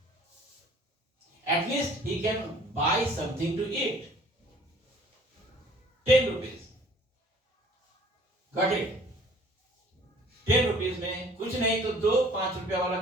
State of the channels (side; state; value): both; normal; correlation 0.53